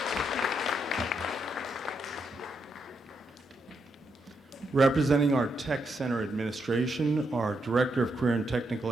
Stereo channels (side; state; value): both; normal; correlation 0.80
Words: Representing our Tech Center Administration are Director of Career and Technical